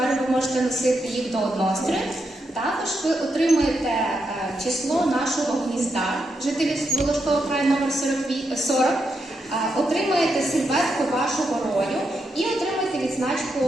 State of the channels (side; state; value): both; normal; correlation 0.83